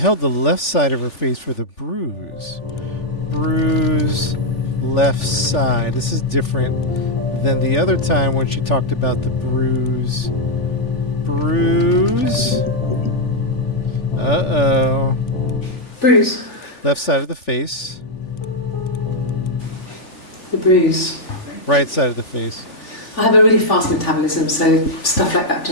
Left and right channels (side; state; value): right; late; 3.4 ms